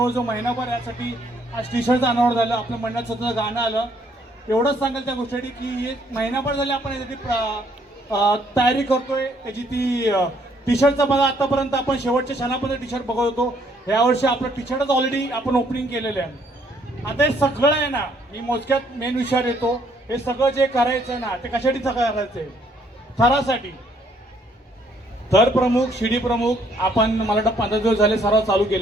महिनाभर यासाठी आज टी शर्टचं अनावरण झालं, आपल्या मंडळात स्वतःचं गाणं आलं. एवढंच सांगेल त्या गोष्टीसाठी की एक महिनाभर झाले आपण यासाठी तयारी करतोय. त्याची ती टी शर्टचं बघा, आतापर्यंत आपण शेवटच्या क्षणापर्यंत टी शर्ट बघत होतो. यावर्षी आपलं टी शर्टच ऑलरेडी आपण ओपनिंग केलेलं आहे. आता हे सगळं आहे ना, मी मोजक्यात मेन विषयावर येतो. हे सगळं जे करायचं ना ते कशासाठी सगळं करायचंय? थरासाठी. थर प्रमुख, शिडी प्रमुख आपण मला वाटतं 15 दिवस झाले सराव चालू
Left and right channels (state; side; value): normal; both; correlation 0.67